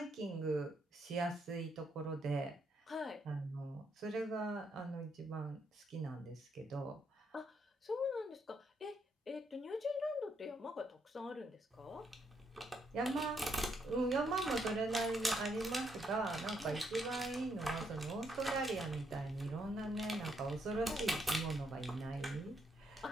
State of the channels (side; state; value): both; normal; correlation 0.76